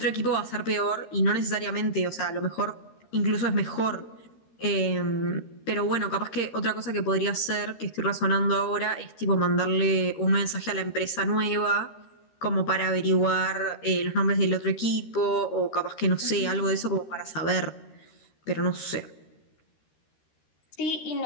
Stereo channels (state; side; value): late; right; 13 ms